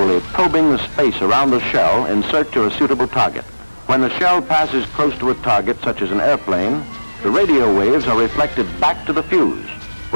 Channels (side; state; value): both; inverted; correlation -1.00